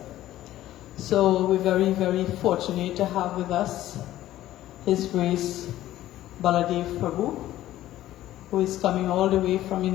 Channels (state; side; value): quieter; right; 14.1 dB